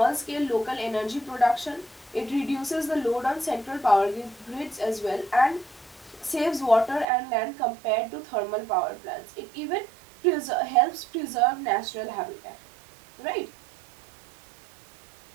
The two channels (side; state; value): left; drops out; at 7.1 s